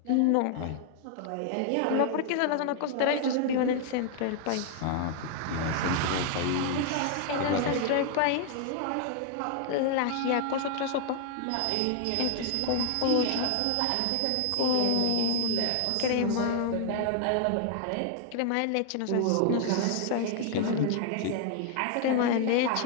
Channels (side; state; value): both; different; correlation 0.00